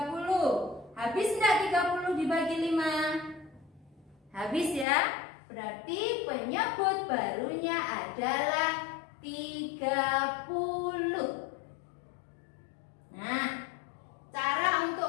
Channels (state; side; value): drops out; right; at 4.9 s